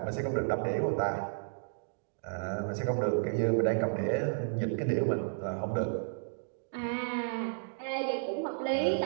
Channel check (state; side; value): silent; left; digital silence